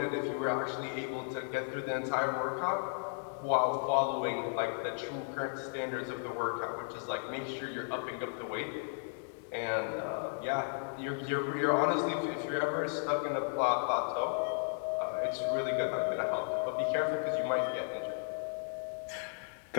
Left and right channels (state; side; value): silent; right; digital silence